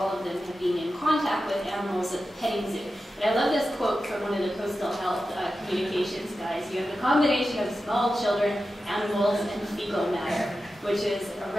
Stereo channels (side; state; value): both; normal; correlation 0.92